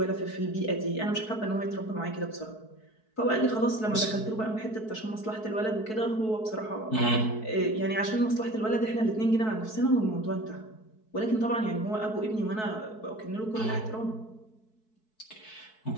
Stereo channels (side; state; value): right; late; 4.6 ms